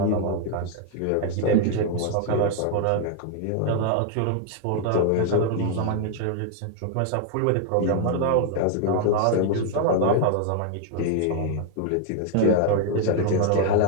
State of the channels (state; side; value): different; both; correlation 0.00